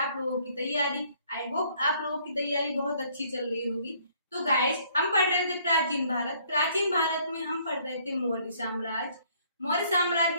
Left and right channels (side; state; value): both; inverted; correlation -0.63